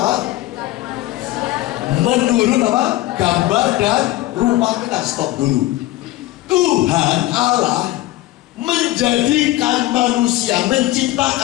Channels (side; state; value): right; quieter; 16.6 dB